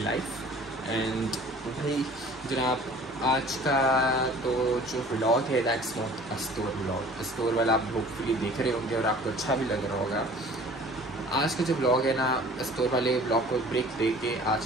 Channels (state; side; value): normal; both; correlation 0.47